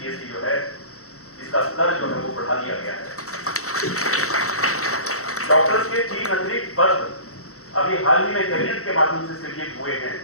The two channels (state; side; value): late; right; 0.64 ms